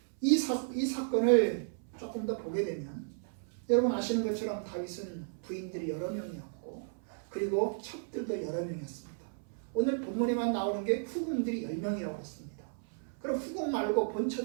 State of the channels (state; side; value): silent; left; 55 dB below the other